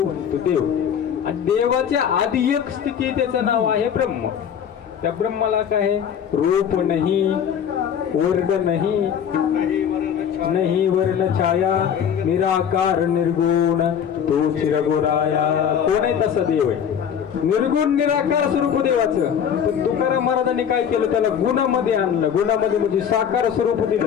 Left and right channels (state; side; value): quieter; right; 8.3 dB